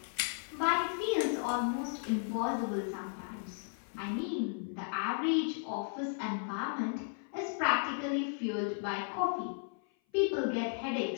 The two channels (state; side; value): silent; right; 55 dB below the other